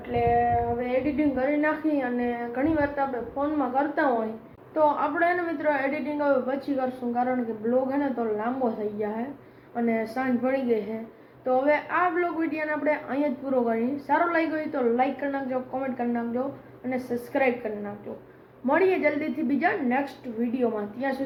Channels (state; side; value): identical; both; correlation 1.00